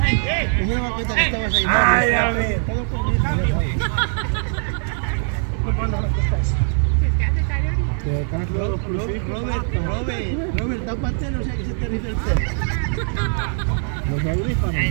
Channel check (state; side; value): silent; left; digital silence